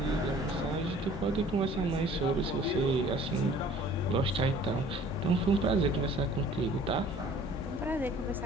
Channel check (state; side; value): normal; both; correlation 0.51